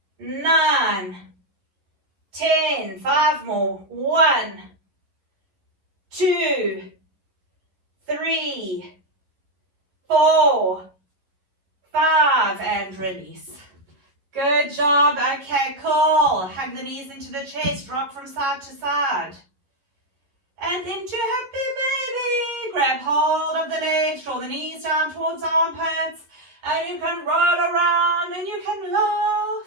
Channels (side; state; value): left; late; 11 ms